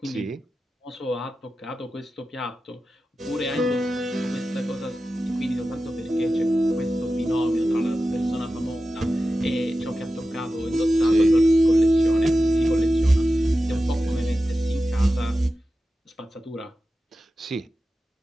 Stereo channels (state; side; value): normal; both; correlation 0.93